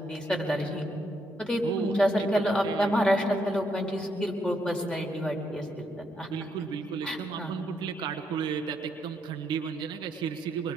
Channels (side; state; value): both; normal; correlation 0.76